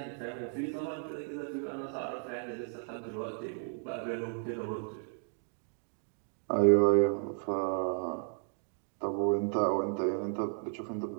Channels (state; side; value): silent; left; 55 dB below the other